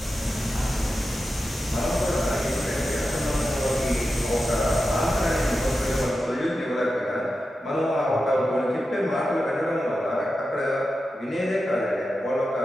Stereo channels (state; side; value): normal; both; correlation 0.91